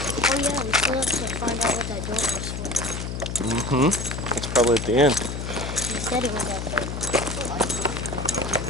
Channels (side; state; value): left; noise; hum, 5 dB below the sound